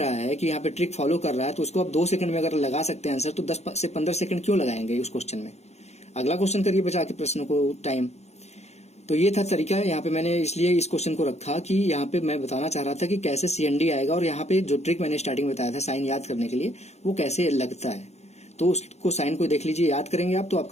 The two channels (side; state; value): right; late; 0.32 ms